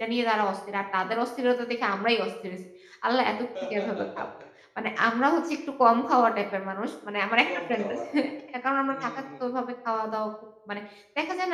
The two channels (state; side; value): identical; both; correlation 1.00